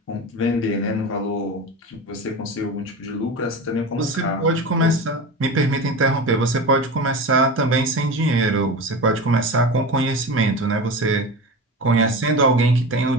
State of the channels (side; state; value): both; normal; correlation 0.28